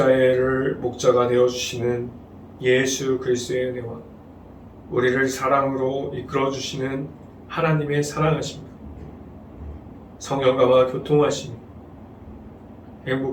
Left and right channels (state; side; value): identical; both; correlation 1.00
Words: 되어주시는 예수 그리스도의 은혜와 우리를 사랑으로 이끌어주시는 하나님의 사랑하심, 성령과 교통하심,